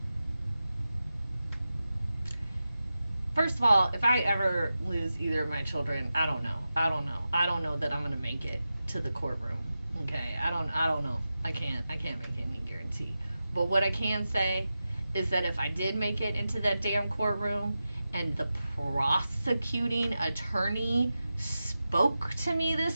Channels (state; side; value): inverted; both; correlation -0.92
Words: First of all, if I ever lose either of my children, I don't know. I don't know that I'm gonna make it to the courtroom. Okay, I don't know. I can't make any guarantee. But what I can say is that if I did make it into that damn courtroom and the prosecuting attorney spoke to me